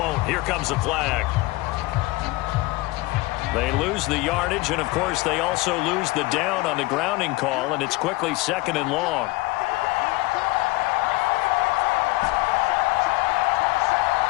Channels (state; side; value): quieter; right; 21.4 dB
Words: Here comes the flag. They lose the yardage, and, of course, they also lose the down on the grounding call, and it's quickly 2nd and long.